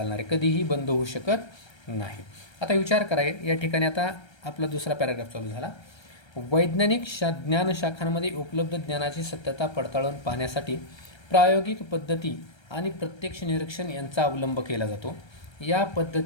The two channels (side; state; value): right; late; 1.3 ms